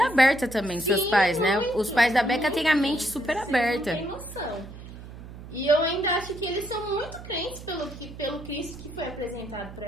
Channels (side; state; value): right; noise; hum, 14 dB below the sound